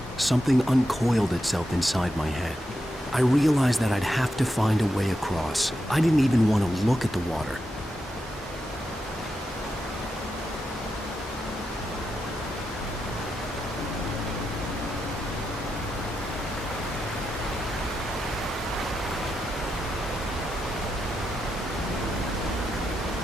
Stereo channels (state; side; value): normal; both; correlation 0.86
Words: something uncoiled itself inside my head. I realized that I'd have to find a way across. I didn't even want to look at the water.